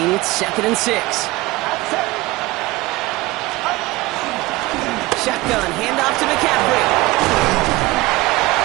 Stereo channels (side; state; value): left; quieter; 20.4 dB